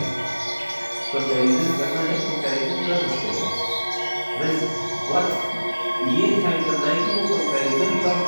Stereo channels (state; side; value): inverted; both; correlation -1.00